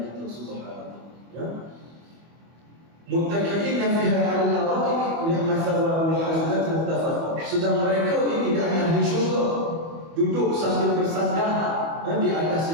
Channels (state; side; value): late; left; 25 ms